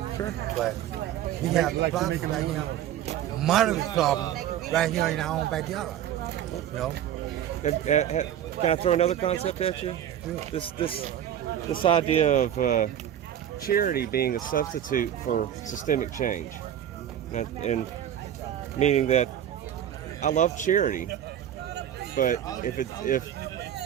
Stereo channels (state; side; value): quieter; left; 10.5 dB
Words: Sure. But we have the problem right here, moderate problem right here in our own backyard. You know? Can I throw another concept at you? This idea of charity being a substitute for systemic change, and meaning that I love charity, but if